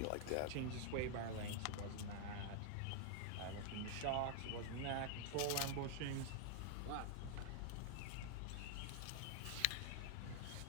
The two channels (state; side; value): different; both; correlation 0.00